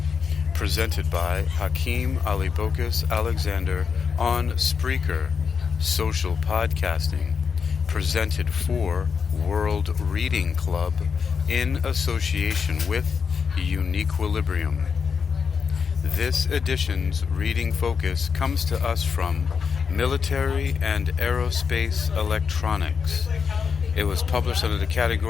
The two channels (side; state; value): right; quieter; 6.0 dB